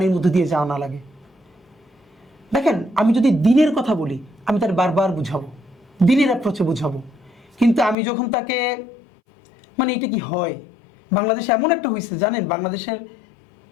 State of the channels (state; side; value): drops out; right; at 8.0 s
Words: মধ্যে দিয়ে যাওয়া না লাগে। দেখেন, আমি যদি দিনের কথা বলি আমি তার বারবার বুঝাবো, দিনের অ্যাপ্রোচে বুঝাবো, কিন্তু আমি যখন তাকে, মানে এটা কি হয়, বাংলাদেশে এমন একটা হয়েছে জানেন, বাংলাদেশের